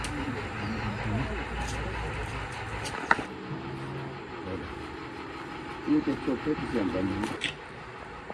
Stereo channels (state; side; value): identical; both; correlation 1.00